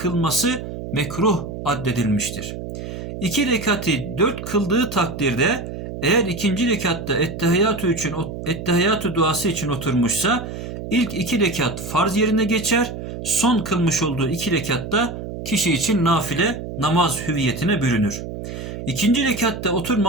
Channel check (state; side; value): noise; right; hum, 8 dB below the sound